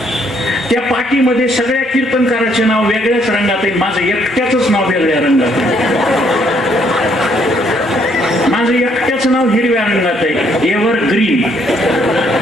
त्या पाठीमध्ये सगळ्या कीर्तनकाराचे नाव वेगळ्याच रंगात आहे, माझं एकट्याच नाव वेगळ्या रंगात आहे. माझं एकट्याच नाव हिरव्या रंगात आहे, एव्हर ग्रीन.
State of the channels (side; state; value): both; normal; correlation 0.69